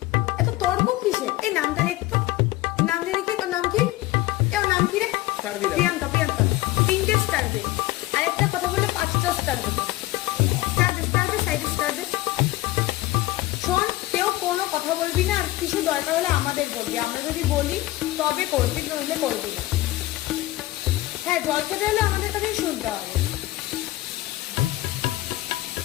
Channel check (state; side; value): quieter; right; 17.5 dB